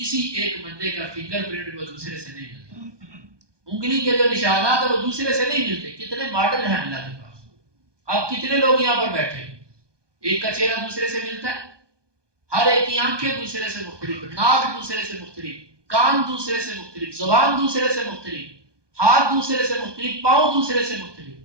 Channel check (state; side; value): late; left; 1.2 ms